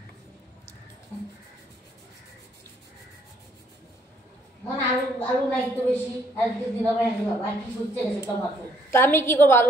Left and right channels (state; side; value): normal; both; correlation 0.67